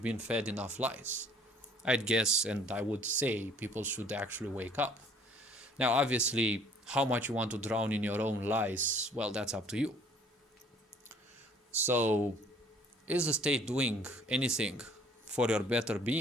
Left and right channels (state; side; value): normal; both; correlation 0.56